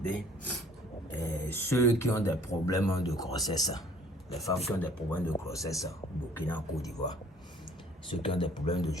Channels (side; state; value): both; normal; correlation 0.55